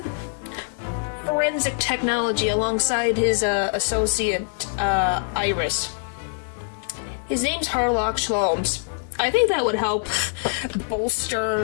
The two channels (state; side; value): silent; right; digital silence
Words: forensic technology alongside his associate, Iris. His name's Harlock Sholmes. I think that would help